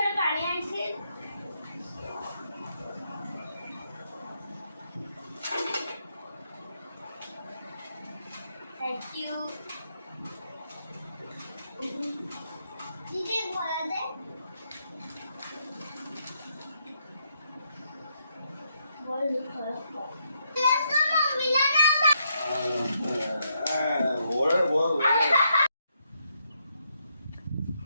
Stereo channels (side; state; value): both; inverted; correlation -0.77